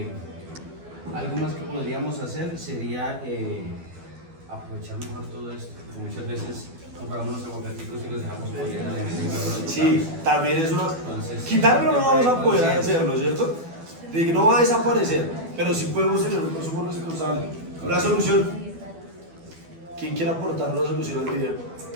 algo más que podríamos hacer sería aprovechar mejor todo esto. Muchas veces compramos los aguacaticos y los dejamos por allá. Sí, también es una... Entonces, quitarlo no vamos a poder hacerlo, ¿cierto? No va a desaparecer, pero sí podemos tener un consumo responsable. Una solución. ¿Quién quiere aportar una solución al video?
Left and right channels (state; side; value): late; left; 12 ms